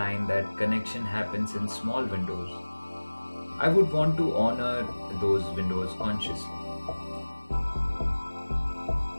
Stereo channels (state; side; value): inverted; both; correlation -1.00